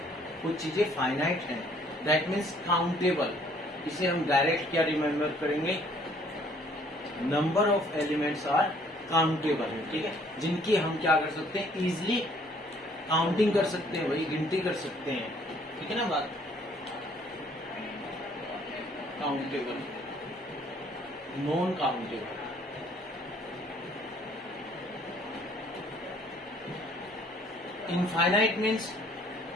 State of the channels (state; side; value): normal; both; correlation 0.60